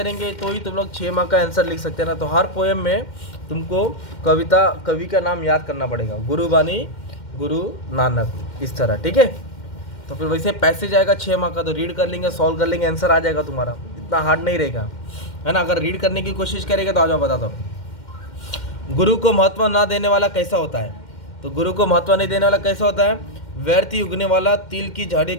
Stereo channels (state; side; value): late; right; 2.1 ms